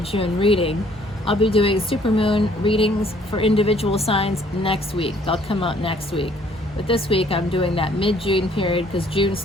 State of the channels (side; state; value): both; normal; correlation 0.61